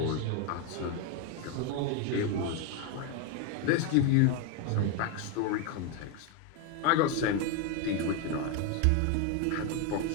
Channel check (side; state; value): both; different; correlation 0.01